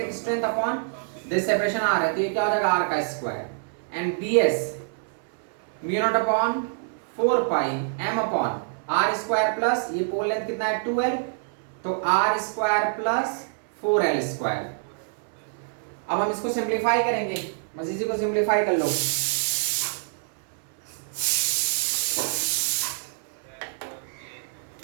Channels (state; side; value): silent; left; 61 dB below the other